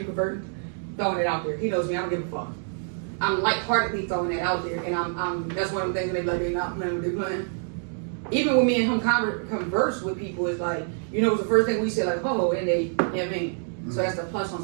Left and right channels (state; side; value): silent; left; 59 dB below the other